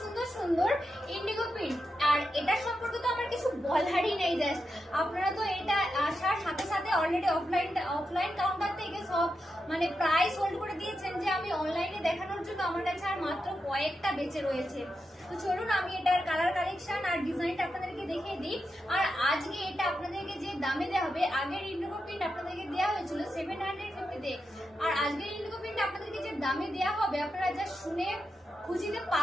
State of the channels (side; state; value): both; normal; correlation 0.87